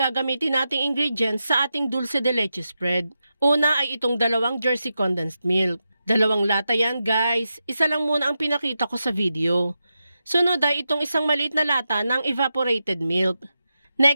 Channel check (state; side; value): inverted; both; correlation -0.89